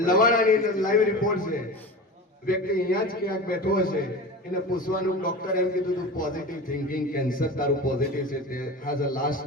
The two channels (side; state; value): both; normal; correlation 0.30